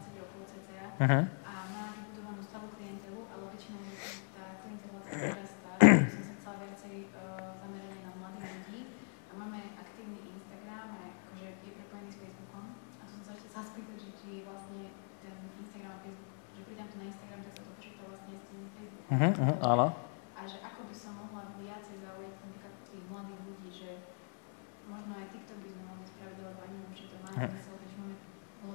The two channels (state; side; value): silent; right; 51 dB below the other